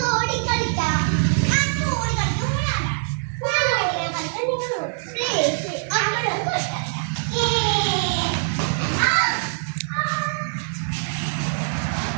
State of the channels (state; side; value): silent; left; digital silence